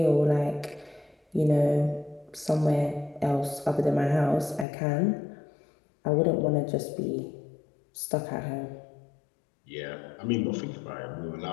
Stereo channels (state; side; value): drops out; right; at 4.7 s